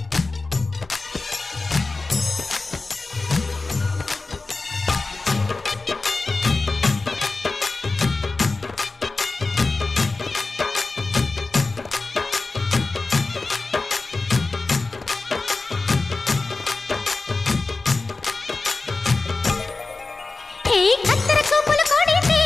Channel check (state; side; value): quieter; right; 3.6 dB